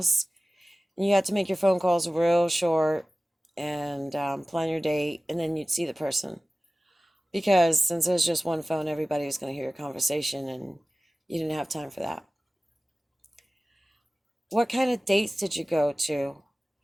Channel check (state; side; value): normal; both; correlation 0.97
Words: and you had to make your phone calls real short and plan your date, and then you'd see the person. Because since there's just one phone, everybody was going to hear your conversation, and you didn't have time for that. What kind of dates did you go to?